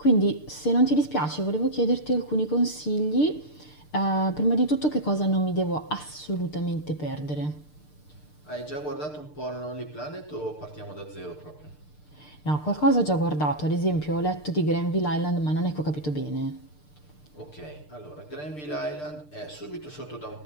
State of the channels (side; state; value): right; late; 6.7 ms